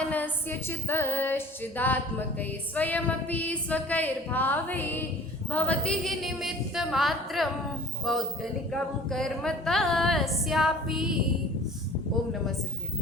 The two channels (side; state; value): both; normal; correlation 0.46